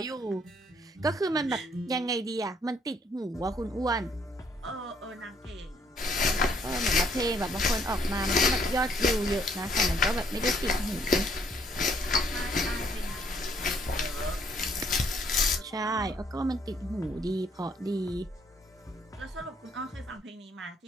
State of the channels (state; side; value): normal; both; correlation 0.66